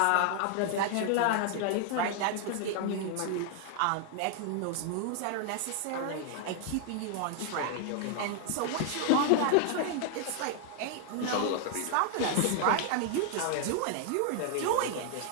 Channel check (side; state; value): both; different; correlation 0.00